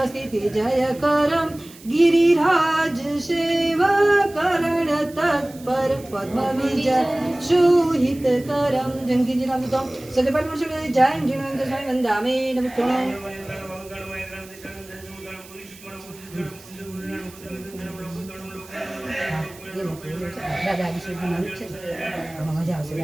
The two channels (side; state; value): right; noise; hiss, 21 dB below the sound